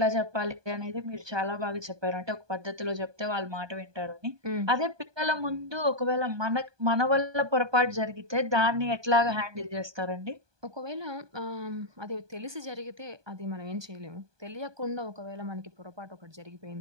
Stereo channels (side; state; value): left; late; 1.2 ms